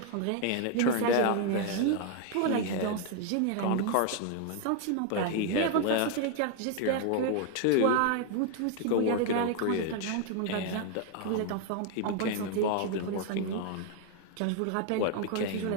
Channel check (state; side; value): different; both; correlation 0.00